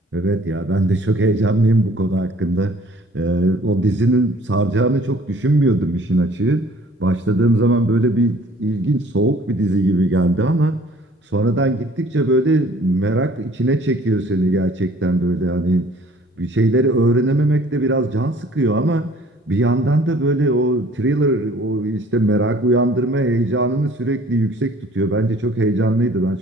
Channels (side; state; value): both; normal; correlation 0.54